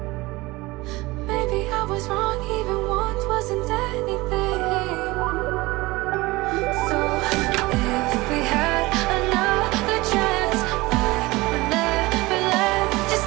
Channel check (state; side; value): quieter; left; 21.4 dB